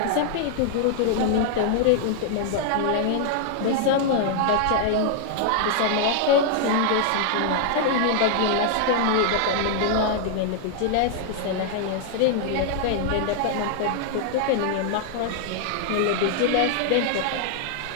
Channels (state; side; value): different; both; correlation 0.00